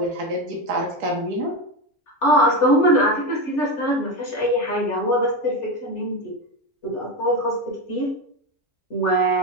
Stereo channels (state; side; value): normal; both; correlation 0.15